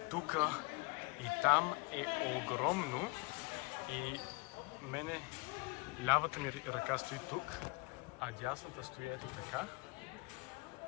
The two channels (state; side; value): quieter; right; 27.8 dB